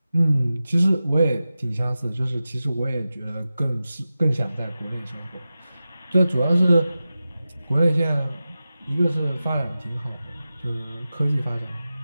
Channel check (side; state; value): both; inverted; correlation -0.94